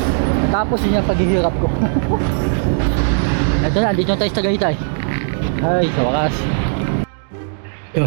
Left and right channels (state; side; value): silent; left; digital silence